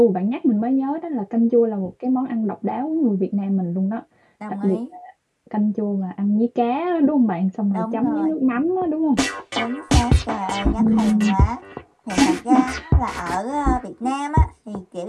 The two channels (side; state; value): both; identical; correlation 1.00